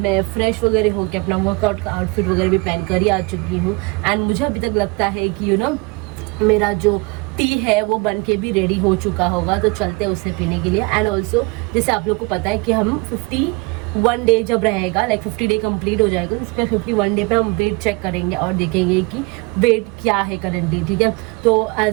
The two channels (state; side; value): quieter; left; 27.7 dB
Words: फ्रेश वगैरह होकर अपना वर्कआउट का आउटफिट वगैरह भी पहन कर ही आ चुकी हूँ। एंड मुझे अभी तक लगता है कि मेरा जो टी है वो बन के भी रेडी हो चुका होगा, तो चलते हैं उसे पीने के लिए। एंड ऑल्सो जैसे आप लोग को पता है कि हम 51 डे जब रहेगा, लाइक 50 डे कंप्लीट हो जाएगा, तो उस पर 51 डे पे हम वेट चेक करेंगे और देखेंगे कि वेट क्या है करंटली, ठीक है। तो